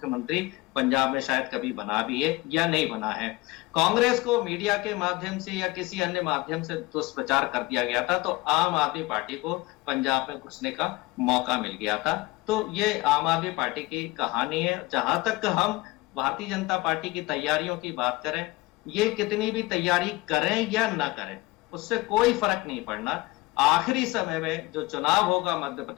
पंजाब में शायद कभी बना भी है या नहीं बना है। कांग्रेस को मीडिया के माध्यम से या किसी अन्य माध्यम से दुष्प्रचार कर दिया गया था, तो आम आदमी पार्टी को पंजाब में घुसने का मौका मिल गया था। तो ये आम आदमी पार्टी की कहानी है। जहां तक हम भारतीय जनता पार्टी की तैयारियों की बात करें, ये कितनी भी तैयारी करें या ना करें उससे कोई फर्क नहीं पड़ना। आखिरी समय में जो चुनाव होगा मध्य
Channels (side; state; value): right; quieter; 21.4 dB